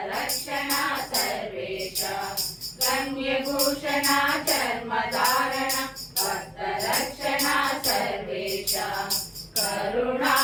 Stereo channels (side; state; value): both; identical; correlation 1.00